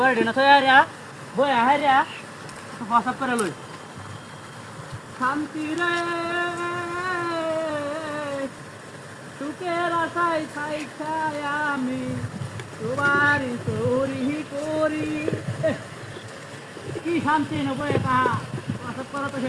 না থয়া রিয়া বই আহে রিয়া প্রসাব করে লই শান্তি রে সুখের আশায় ছাই ছাই আমি সবারই চোরি করি কি শান্তি নবই তাহা প্রসাব করা তো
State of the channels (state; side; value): identical; both; correlation 1.00